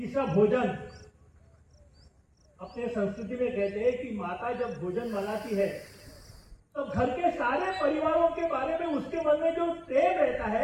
भोजन। अपने संस्कृति में कहते हैं कि माता जब भोजन बनाती है तो घर के सारे परिवारों के बारे में उसके मन में जो प्रेम रहता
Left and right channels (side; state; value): both; identical; correlation 1.00